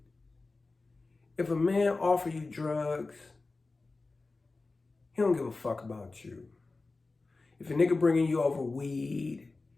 if a man offer you drugs, he don't give a fuck about you. If a nigga bringing you over weed,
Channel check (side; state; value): right; quieter; 3.6 dB